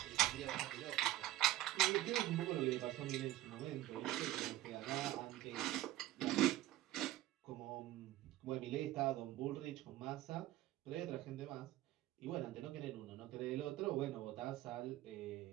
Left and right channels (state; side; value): quieter; left; 15.2 dB